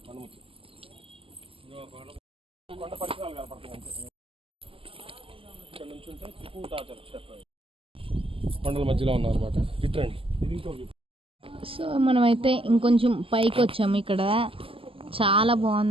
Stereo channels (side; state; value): left; late; 0.26 ms